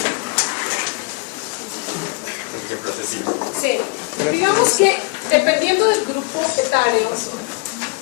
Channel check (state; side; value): quieter; right; 30.6 dB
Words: Sí, digamos que dependiendo del grupo etario